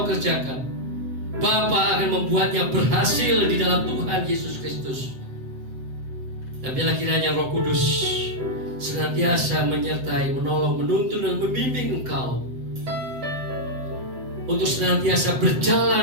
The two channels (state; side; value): late; left; 7.9 ms